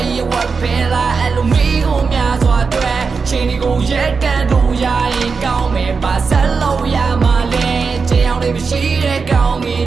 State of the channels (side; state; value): left; quieter; 5.0 dB